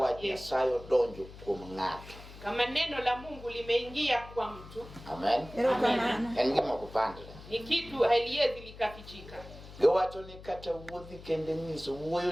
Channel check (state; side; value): noise; left; hum, 16 dB below the sound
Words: Yesu. Sayo donjo kuom ng'ato. Kama neno la Mungu limeingia kwa mtu. Amen. Amen. En gima kupandre. Ni kitu haliwezi likafichika. Giwacho ni kata wuodhi kende nyiso